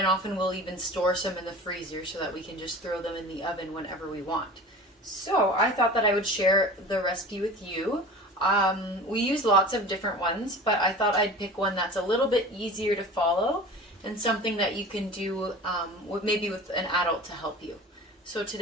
often we'll even store some in the freezer so that we can just throw them in the oven whenever we want. So I thought that I would share the recipe with you. We use lots of different ones, but I thought I'd pick one that's a little bit easier to follow and something that you can do maybe with an adult to help you. So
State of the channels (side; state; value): both; normal; correlation 0.37